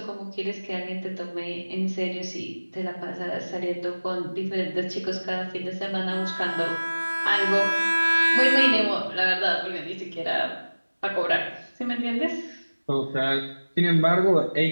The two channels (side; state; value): both; inverted; correlation -1.00